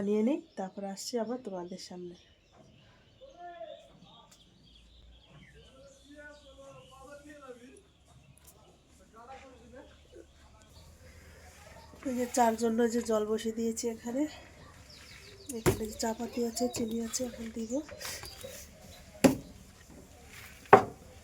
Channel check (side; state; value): both; identical; correlation 1.00